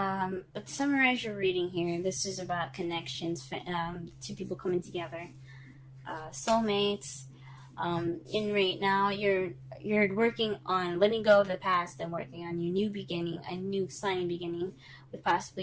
to summarize your reading here, this is about connections, two people coming together, soulmates. In right now, you're working on letting go of the past and working on your new beginning, a new exciting beginning with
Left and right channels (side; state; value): both; identical; correlation 1.00